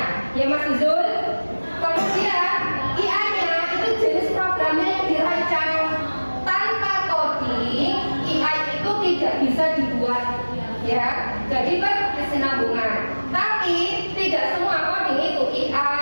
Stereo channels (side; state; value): both; inverted; correlation -1.00